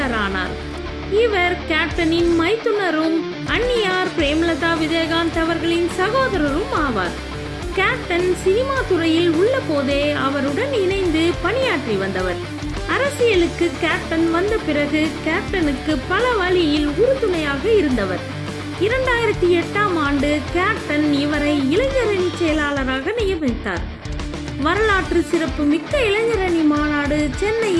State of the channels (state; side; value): identical; both; correlation 1.00